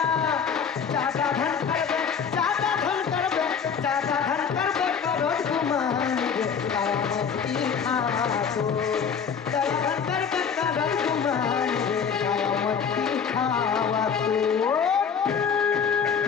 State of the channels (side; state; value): right; quieter; 6.7 dB